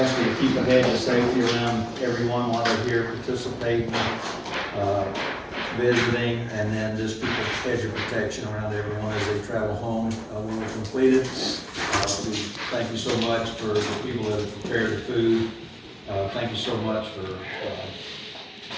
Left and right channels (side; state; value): both; identical; correlation 1.00